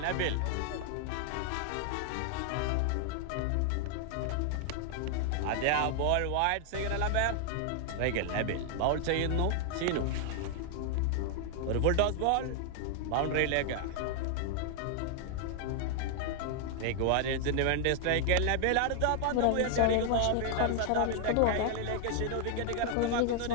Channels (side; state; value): both; different; correlation 0.00